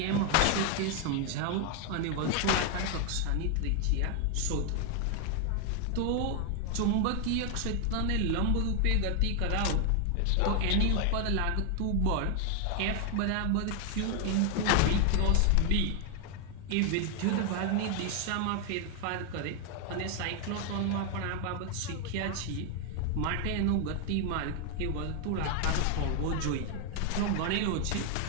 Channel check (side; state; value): both; different; correlation 0.01